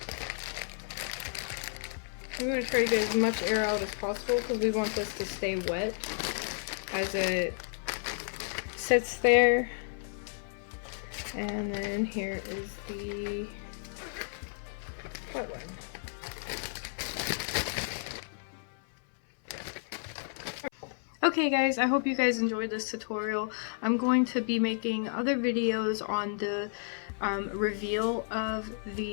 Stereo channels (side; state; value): right; silent; 56 dB below the other